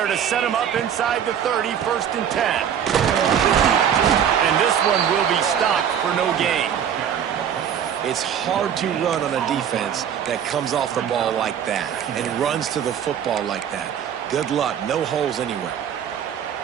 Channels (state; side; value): quieter; left; 8.8 dB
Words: to set them up inside the 30, 1st and 10. And this one will be stopped for no gain. It's hard to run on a defense that comes off the ball like that and runs to the football like that. Good luck. No holes anywhere.